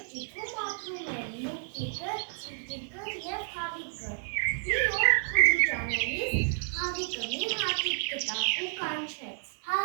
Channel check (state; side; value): silent; left; digital silence